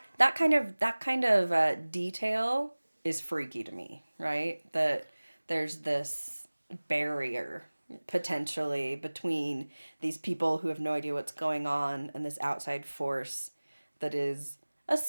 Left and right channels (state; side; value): inverted; both; correlation -1.00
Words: kind of detail is freaky to me, right? That there's this barrier potentially between these people who have no idea what's going on and this outside force that is a